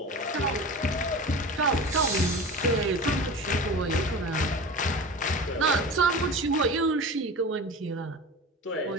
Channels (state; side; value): normal; both; correlation 0.32